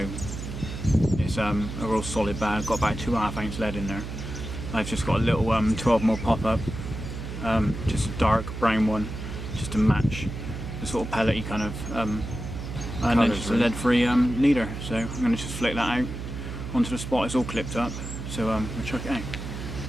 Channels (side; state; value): right; noise; hum, 7 dB below the sound